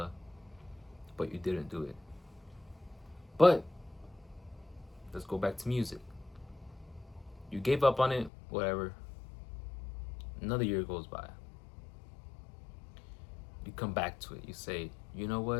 but you didn't do it. But let's go back to music. You gave up on it, whatever. Another year goes by. You come back to it. You say, you know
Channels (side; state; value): right; drops out; at 8.3 s